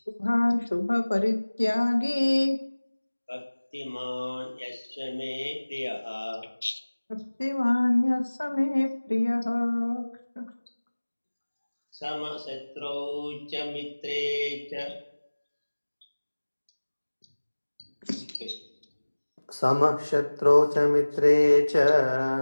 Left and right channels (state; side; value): inverted; both; correlation -1.00